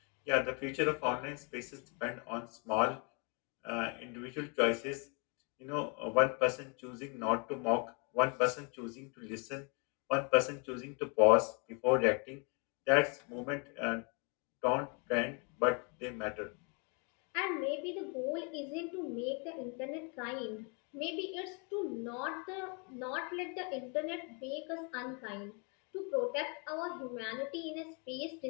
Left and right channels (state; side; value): quieter; right; 35.4 dB